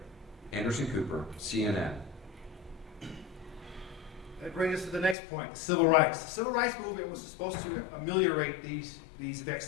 Anderson Cooper, CNN. That brings us to the next point, civil rights. The civil rights movement was supposed to ameliorate these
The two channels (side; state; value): right; drops out; at 5.2 s